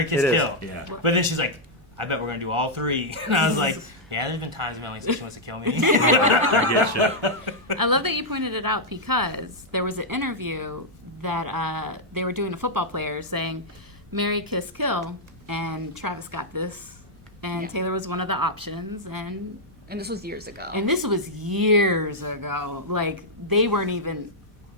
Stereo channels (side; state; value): both; normal; correlation -0.05